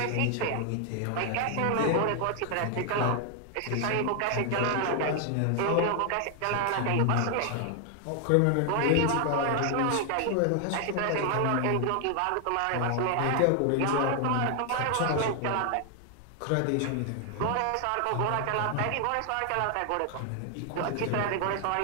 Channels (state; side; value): different; both; correlation 0.00